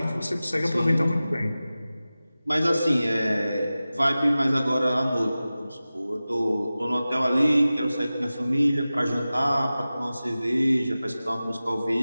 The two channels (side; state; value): both; inverted; correlation -0.96